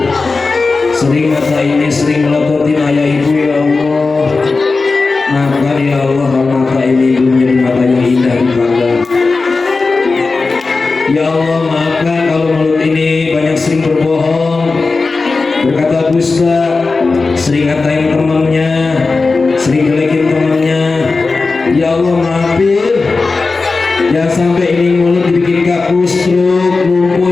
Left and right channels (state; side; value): quieter; right; 4.0 dB